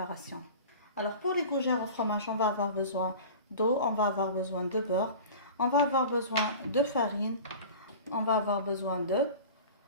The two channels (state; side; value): inverted; both; correlation -0.37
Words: Alors pour les gougères au fromage, on va avoir besoin d'eau, on va avoir besoin de beurre, on va avoir besoin de farine, on va avoir besoin